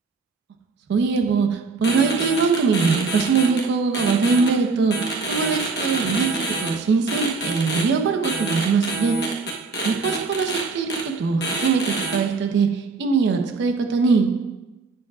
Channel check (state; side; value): quieter; left; 4.2 dB